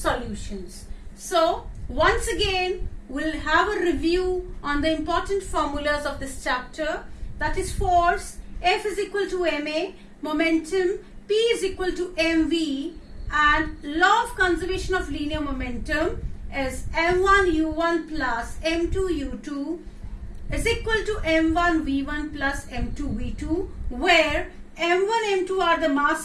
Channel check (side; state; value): both; identical; correlation 1.00